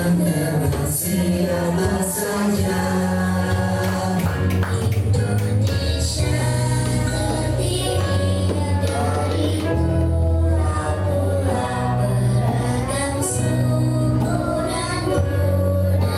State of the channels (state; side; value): identical; both; correlation 1.00